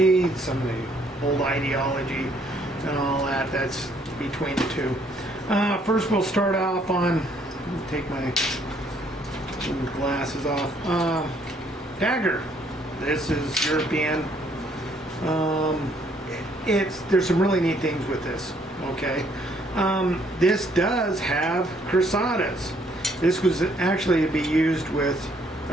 some of the old ideology and all that that's between the two. First we'll start off on, take my glasses off. Dagger. This is European. There's some really neat things with this, okay? This does have crusadas. This was actually to be used with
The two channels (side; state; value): both; normal; correlation 0.66